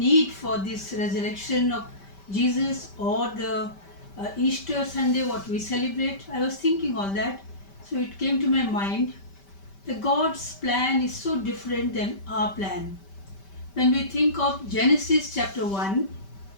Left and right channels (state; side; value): late; right; 5.1 ms